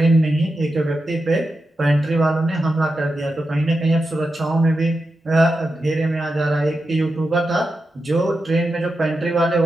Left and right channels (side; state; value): both; normal; correlation 0.89